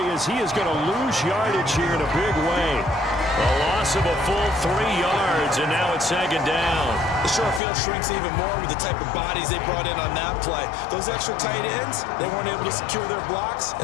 as he is going to lose yardage here in a big way. A loss of a full 3 yards, and now it's 2nd down. The short field shrinks even more with the type of bodies they brought in on that play. Those extra tight ends, they weren't able to secure their blocks,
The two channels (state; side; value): drops out; right; at 7.6 s